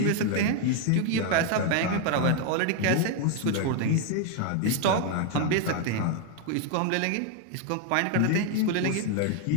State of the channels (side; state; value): both; different; correlation 0.01